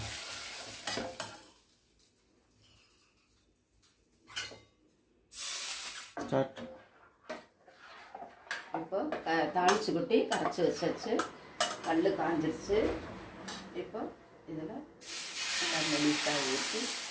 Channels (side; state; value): both; identical; correlation 1.00